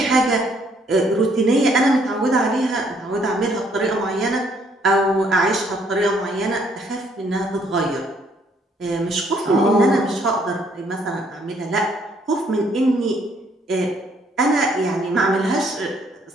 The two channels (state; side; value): normal; both; correlation 0.66